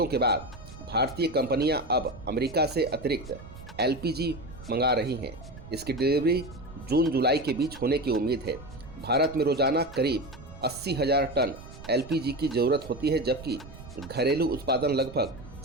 के बाद भारतीय कंपनियां अब अमेरिका से अतिरिक्त एलपीजी मंगा रही हैं। इसकी डिलीवरी जून-जुलाई के बीच होने की उम्मीद है। भारत में रोजाना करीब 80,000 टन एलपीजी की ज़रूरत होती है, जबकि घरेलू उत्पादन लगभग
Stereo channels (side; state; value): right; noise; rumble, 16 dB below the sound